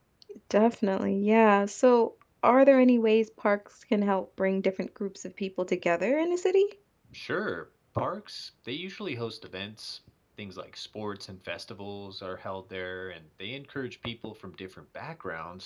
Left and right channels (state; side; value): identical; both; correlation 1.00